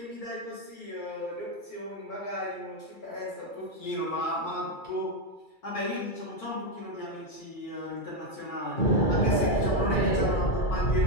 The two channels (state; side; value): late; right; 2.3 ms